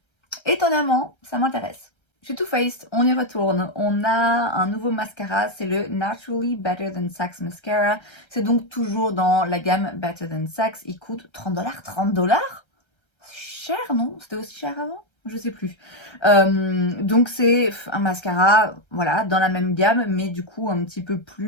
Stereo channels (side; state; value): right; late; 1.3 ms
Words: étonnamment, ça m'intéresse. Chez Too Faced, on y retourne. On a un nouveau mascara, c'est le Naturally Better Than Sex Mascara. C'est donc toujours dans la gamme Better Than Sex. Il coûte 30 $. 30 $? C'est cher, non? C'était aussi cher avant? Je sais plus. Donc c'est un mascara, voilà, dans la même gamme, mais du coup un petit peu